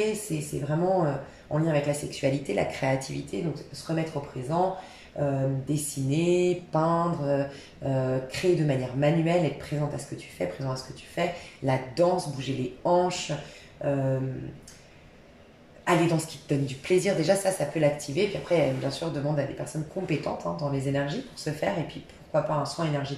c'est vraiment en lien avec la sexualité, la créativité, donc se remettre au présent, dessiner, peindre, créer de manière manuelle, être présente à ce que tu fais, présent à ce que tu fais, la danse, bouger les hanches, aller dans ce qui te donne du plaisir. Déjà, ça peut l'activer. Puis après, bien sûr, demande à des personnes compétentes dans les énergies pour se faire. Et puis, pourquoi pas un soin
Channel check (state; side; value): identical; both; correlation 1.00